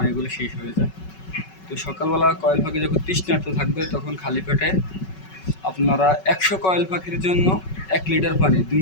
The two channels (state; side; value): late; right; 5.3 ms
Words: শেষ হয়ে যায়। তো সকালবেলা কয়েল পাখি যখন তৃষ্ণার্ত থাকবে, তখন খালি পেটে আপনারা 100 কয়েল পাখির জন্য 1 লিটার পানি 2